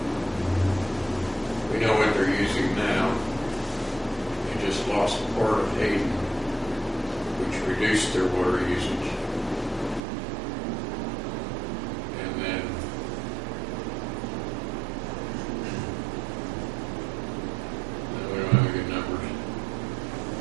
We know what they're using now. They just lost part of Hayden, which reduced their water usage. And then we don't have any good numbers.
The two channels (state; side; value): drops out; left; at 10.0 s